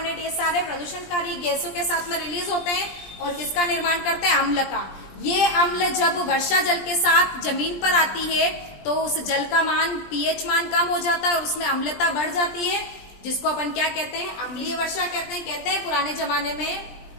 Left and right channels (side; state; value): right; late; 20 ms